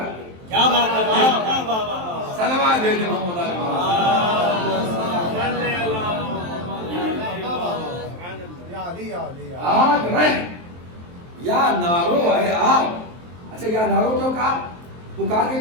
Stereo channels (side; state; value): left; late; 23 ms